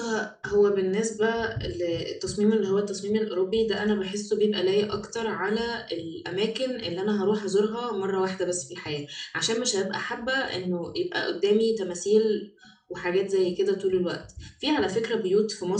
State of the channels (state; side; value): identical; both; correlation 1.00